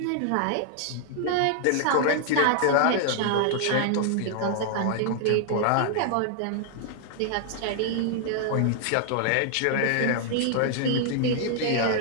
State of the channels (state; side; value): different; both; correlation 0.00